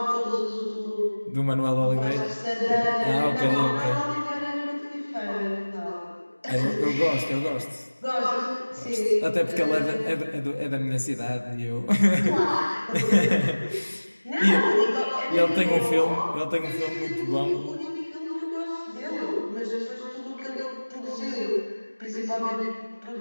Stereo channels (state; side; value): inverted; both; correlation -1.00